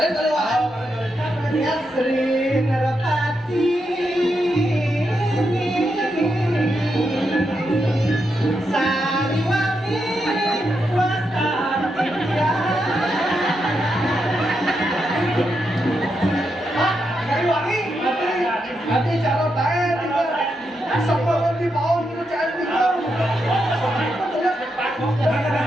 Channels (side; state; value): both; normal; correlation 0.83